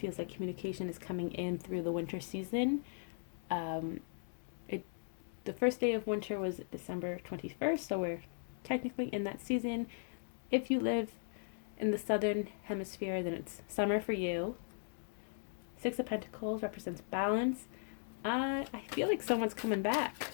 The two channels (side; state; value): right; silent; digital silence